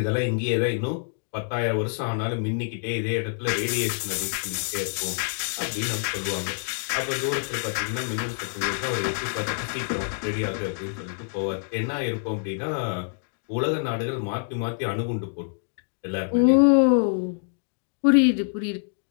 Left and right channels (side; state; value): right; silent; digital silence